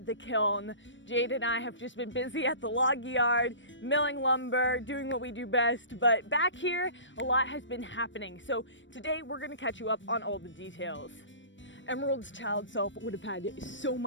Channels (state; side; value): late; right; 0.54 ms